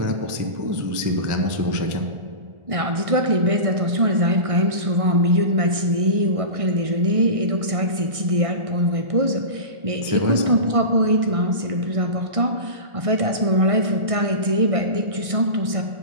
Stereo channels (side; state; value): left; late; 1.6 ms